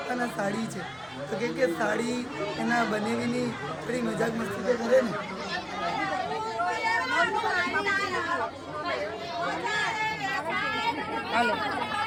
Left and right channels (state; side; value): identical; both; correlation 1.00